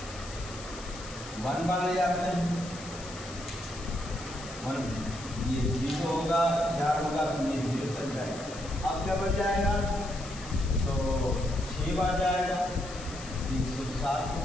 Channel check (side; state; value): left; noise; hiss, 15 dB below the sound